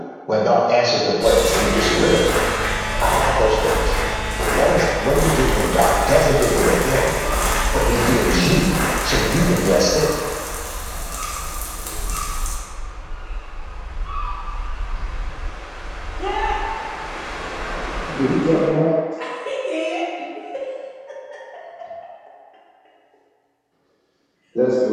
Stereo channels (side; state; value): both; identical; correlation 1.00